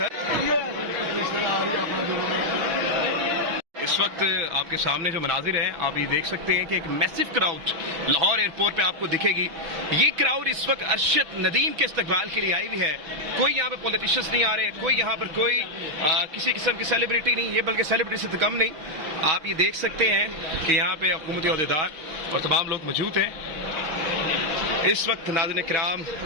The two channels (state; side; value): late; left; 6.1 ms